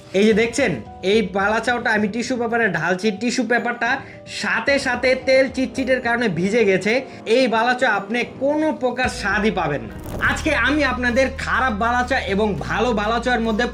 এই যে দেখছেন, এই বালাচাওটা আমি টিস্যু পেপারে ঢালছি, টিস্যু পেপারটা সাথে সাথে তেল চিটচিটের কারণে ভিজে গেছে। এই বালাচা আপনি কোনো প্রকার স্বাদই পাবেন না। আজকে আমি আপনাদের খারাপ বালাচা এবং ভালো বালাচার মধ্যে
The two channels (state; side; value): identical; both; correlation 1.00